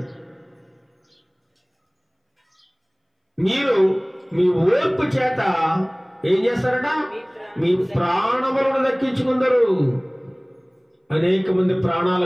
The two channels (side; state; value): both; identical; correlation 1.00